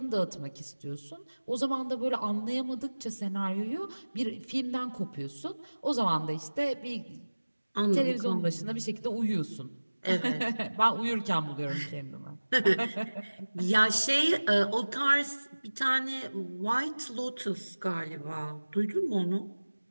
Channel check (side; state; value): both; inverted; correlation -1.00